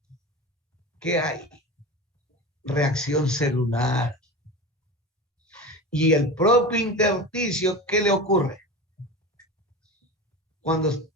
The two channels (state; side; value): normal; both; correlation 0.28